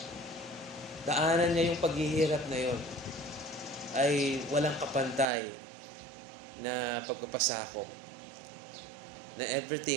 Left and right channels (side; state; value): left; drops out; at 5.2 s